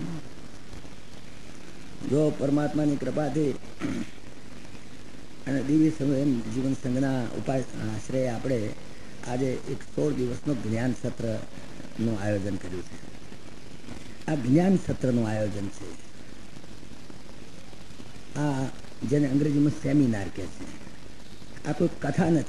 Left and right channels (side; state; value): both; identical; correlation 1.00